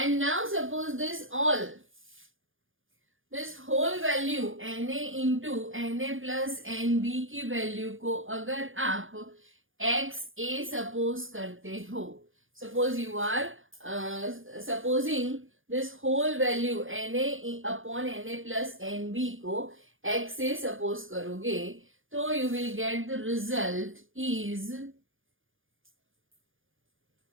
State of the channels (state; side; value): late; left; 0.58 ms